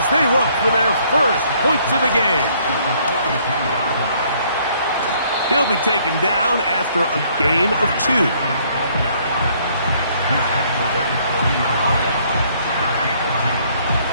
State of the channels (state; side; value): inverted; both; correlation -0.64